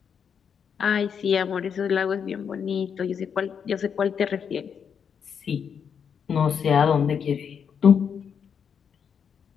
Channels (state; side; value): quieter; right; 7.2 dB